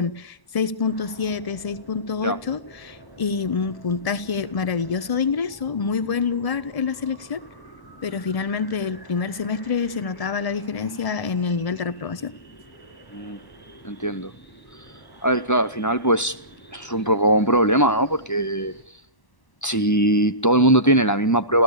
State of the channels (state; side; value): late; right; 1.0 ms